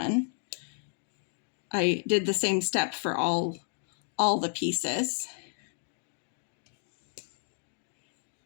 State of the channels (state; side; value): silent; right; 56 dB below the other